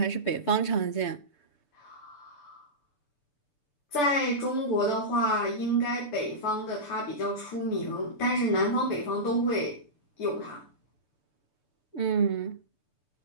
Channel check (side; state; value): right; late; 6.8 ms